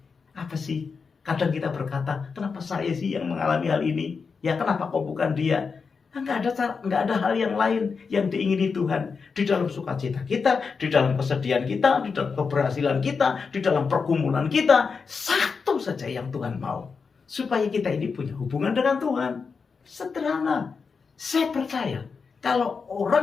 Apa sih? Kadang kita berkata, kenapa saya sih yang mengalami hal ini? Ya kenapa kok bukan dia? Enggak ada hal yang lain yang diingini Tuhan. Di dalam sukacita kita, di dalam kesedihan kita, di dalam keberhasilan kita, di dalam pergumulan kita, satu saja yang Tuhan mau. Supaya kita ini punya hubungan dengan Tuhan. Sederhana. Saya percaya kalau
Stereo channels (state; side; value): quieter; right; 5.2 dB